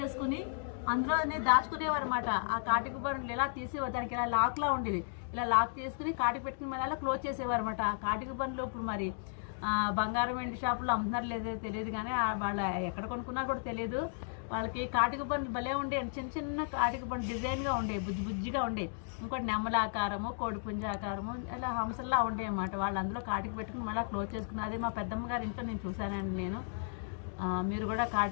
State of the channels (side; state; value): right; silent; digital silence